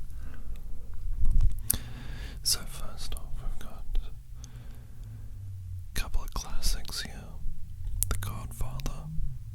So first off, we've got a couple of classics here. The Godfather,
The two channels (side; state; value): both; identical; correlation 1.00